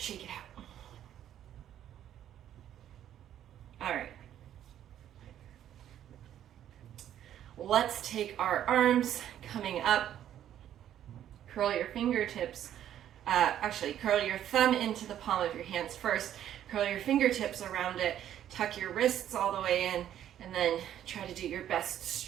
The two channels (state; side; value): quieter; left; 10.9 dB